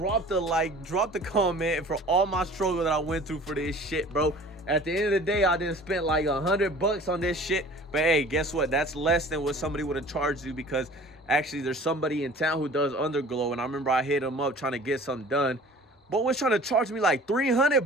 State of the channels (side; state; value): both; normal; correlation 0.46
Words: the like, drop the comment, and for all my struggle that I went through for this shit, bro. At the end of the day, I didn't spend like $100 on this shit, but hey, guess what? That's less than what somebody would have charged you, because actually there's somebody in town who does Underglow, and I remember I hit him up trying to get something done, but was trying to charge me like